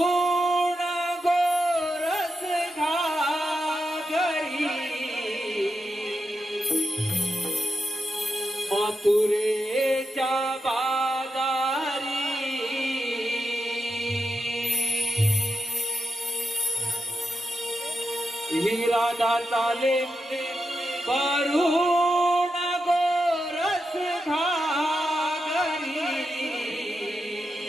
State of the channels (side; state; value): both; normal; correlation 0.86